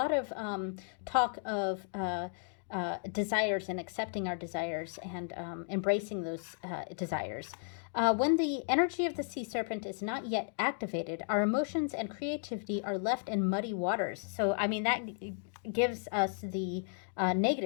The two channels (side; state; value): right; silent; 55 dB below the other